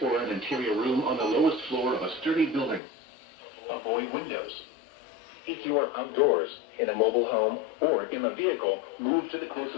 or an interior room on the lowest floor of a sturdy building. Avoid windows. If you are outdoors, in a mobile home, or in a vehicle, move to the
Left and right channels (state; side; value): drops out; right; at 2.8 s